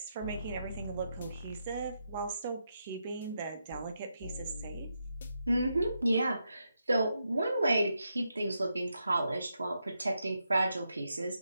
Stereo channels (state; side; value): inverted; both; correlation -0.84